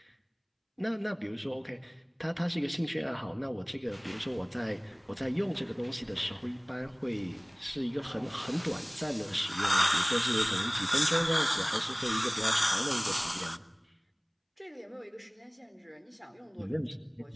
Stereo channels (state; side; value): identical; both; correlation 1.00